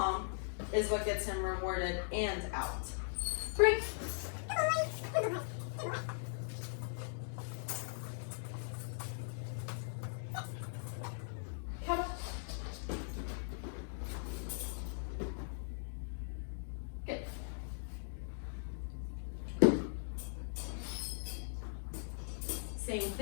is what gets him rewarded and out. Break. Come on. Good. Same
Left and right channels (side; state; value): right; silent; digital silence